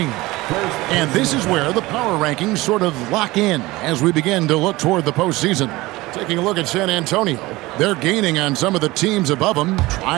And this is where the power rankings sort of lock in as we begin to look toward the postseason. Taking a look at San Antonio, they're gaining on some of the teams above them,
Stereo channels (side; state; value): left; quieter; 20.1 dB